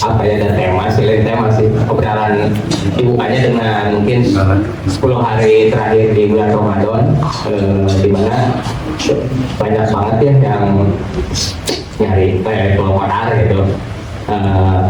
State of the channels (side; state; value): both; identical; correlation 1.00